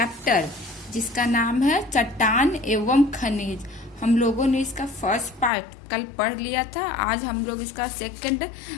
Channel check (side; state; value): right; drops out; at 5.5 s